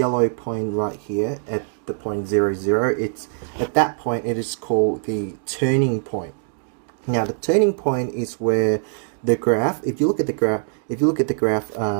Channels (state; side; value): silent; left; digital silence